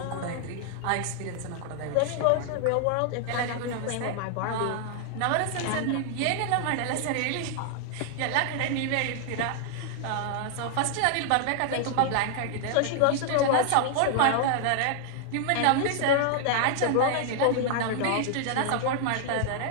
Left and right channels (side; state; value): both; different; correlation 0.00